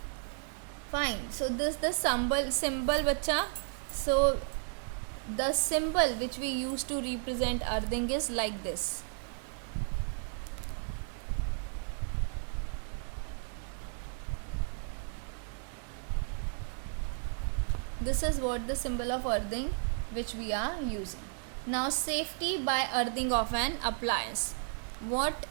Fine. So this the symbol bacha. So the symbol which we use to represent earthing is like this. This is what the symbol of earthing which we are using. Now safety by earthing of an appliance. What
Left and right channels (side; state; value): left; silent; 55 dB below the other